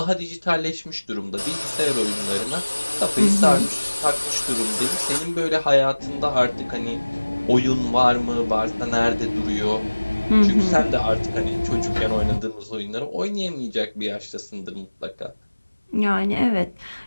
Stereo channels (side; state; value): both; inverted; correlation -1.00